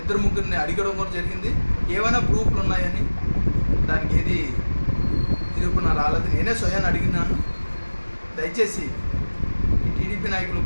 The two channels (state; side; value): inverted; both; correlation -1.00